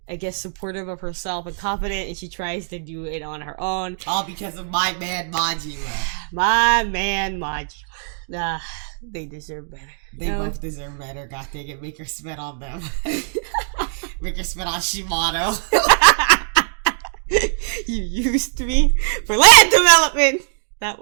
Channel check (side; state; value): left; silent; digital silence